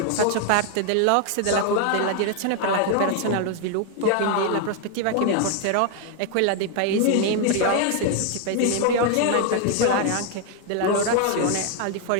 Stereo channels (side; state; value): both; different; correlation 0.00